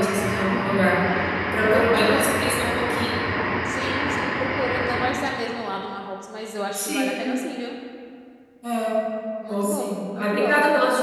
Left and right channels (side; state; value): both; identical; correlation 1.00